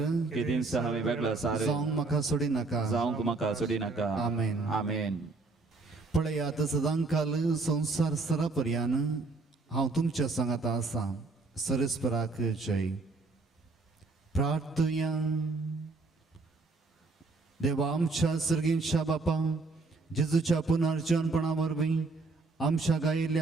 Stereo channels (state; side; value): quieter; left; 3.7 dB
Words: केदीन हांवें वेगळो सार जावंक म्हाका सोडी नाका. जावंक म्हाका सोडी नाका. आमेन. आमेन. पळयात सदांकाल संसार सरापर्यान हांव तुमच्या सांगाता आसा. सरस्पराक जय. प्रार्थया. देवा आमच्या सर्गींच्या बापा, जेजूच्या पुनर्जन्मपणा वरवीं आमच्या